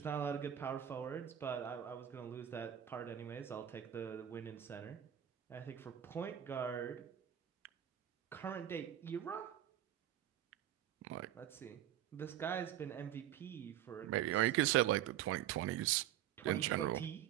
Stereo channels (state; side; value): quieter; left; 11.2 dB